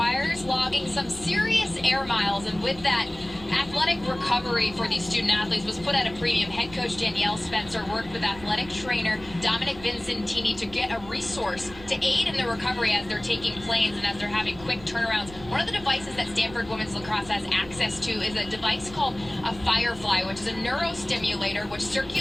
logging some serious air miles, and with that, athletic recovery for these student athletes was put at a premium. Head coach Danielle Spencer worked with athletic trainer Dominic Vincentini to get a resource to aid in the recovery as they're taking planes and as they're having quick turnarounds. One of the devices that Stanford women's lacrosse has access to is a device called a Firefly, which is a neurostimulator which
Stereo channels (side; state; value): right; noise; rumble, 17 dB below the sound